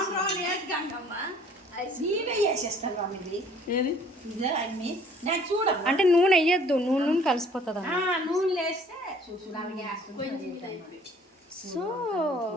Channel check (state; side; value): normal; both; correlation 0.55